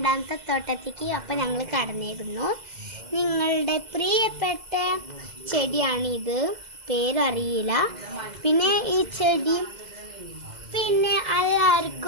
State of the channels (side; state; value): left; late; 2.0 ms